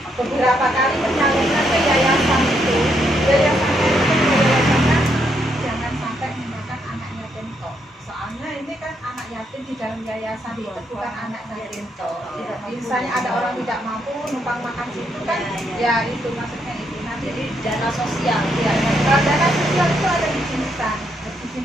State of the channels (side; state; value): both; normal; correlation 0.76